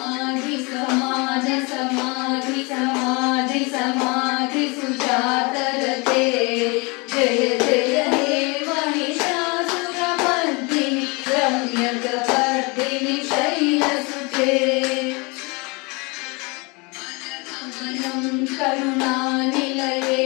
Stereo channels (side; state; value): right; quieter; 28.6 dB